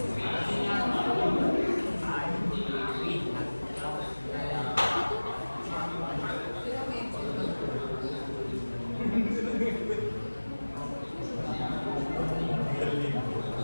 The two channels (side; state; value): both; inverted; correlation -1.00